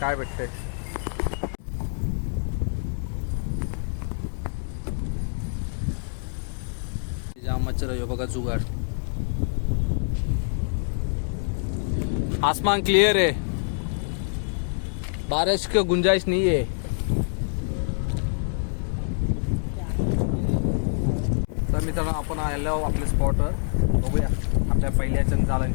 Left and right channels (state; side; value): silent; right; digital silence